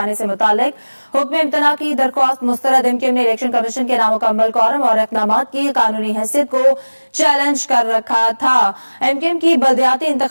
से मुतालिक हुक्म इम्तना की दरख्वास्त मुस्तरद। एमक्यूएम ने इलेक्शन कमीशन के नामुकम्मल कॉलम और इक़दाम की कानूनी हैसियत को चैलेंज कर रखा था। एमक्यूएम की बलदियाती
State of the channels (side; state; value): both; inverted; correlation -1.00